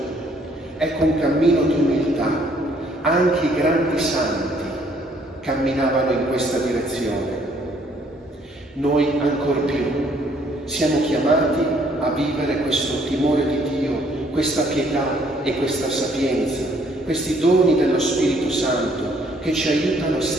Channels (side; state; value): both; normal; correlation 0.64